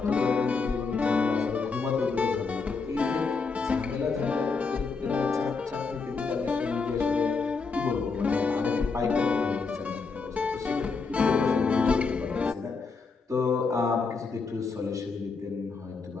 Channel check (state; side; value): quieter; right; 4.6 dB